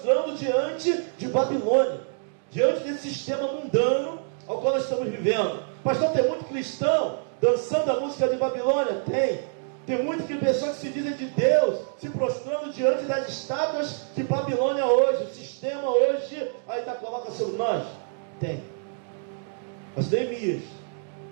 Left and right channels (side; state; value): left; silent; digital silence